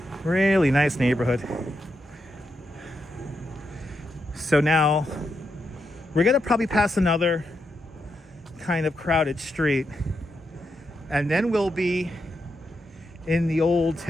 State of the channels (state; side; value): normal; both; correlation 0.84